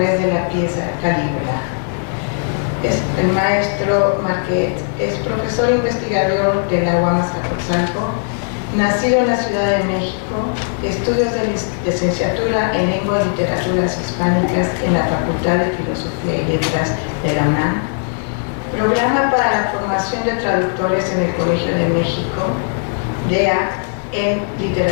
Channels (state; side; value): silent; right; 59 dB below the other